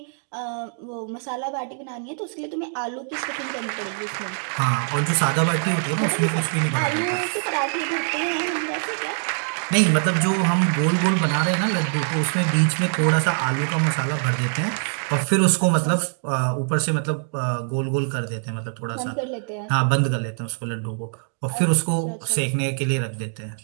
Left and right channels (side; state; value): left; silent; 63 dB below the other